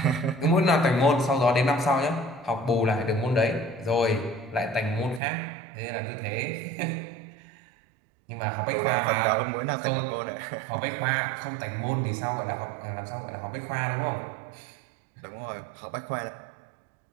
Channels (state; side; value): drops out; left; at 5.2 s